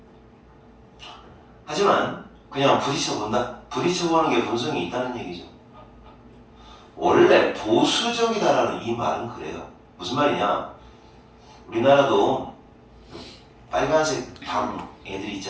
하지만 그냥 부딪혀본다. 부딪혀보는 게 본성이 있다는 얘기죠. 원래 보수적이다라는 이 말은 그래요. 무슨 말이냐? 우리나라도 빨간색 방 애들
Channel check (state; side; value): identical; both; correlation 1.00